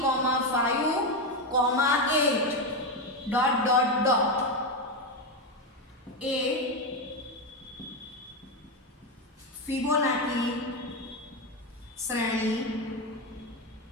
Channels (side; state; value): both; normal; correlation 0.11